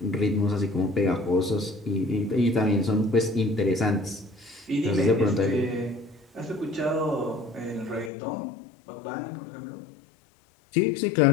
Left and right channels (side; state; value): right; drops out; at 8.1 s